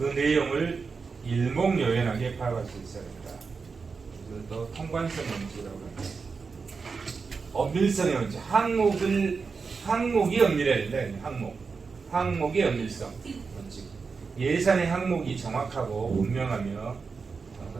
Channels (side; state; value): left; quieter; 4.9 dB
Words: 내용을 일목요연하게 파악할 수 있어야 된다. 그래서 또 통관성 원칙이라고 합니다. 엄밀성의 원칙, 항목이 엄밀해야 된다. 항목의 엄밀성 원칙. 예산의 항목이 정확하고 분명하며